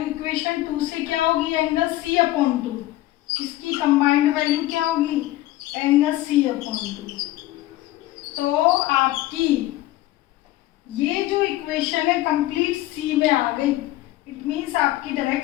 इक्वेशन 2 से क्या होगी, एंगल सी अपॉन 2, इसकी कंबाइंड वैल्यू क्या होगी, एंगल सी अपॉन 2। तो आपकी ये जो इक्वेशन है कंप्लीट सी में आ गई, इट मीन्स आपकी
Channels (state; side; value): quieter; right; 16.1 dB